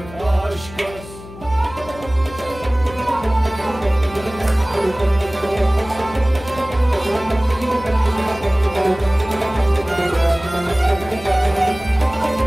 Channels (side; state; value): left; noise; hum, 16 dB below the sound